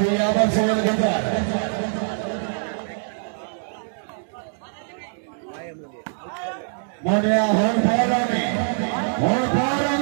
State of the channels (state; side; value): silent; left; digital silence